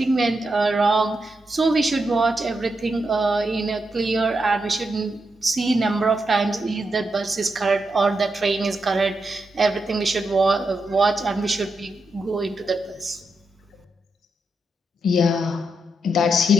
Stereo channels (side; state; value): both; normal; correlation 0.85